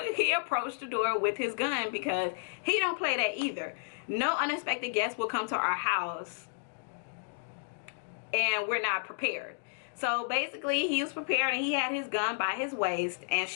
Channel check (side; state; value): right; silent; digital silence